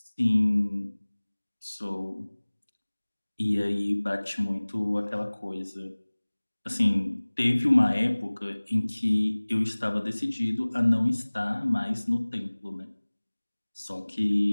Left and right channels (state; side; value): inverted; both; correlation -1.00